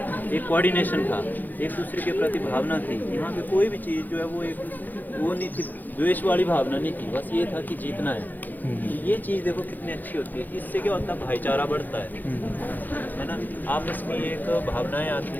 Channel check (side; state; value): right; late; 0.085 ms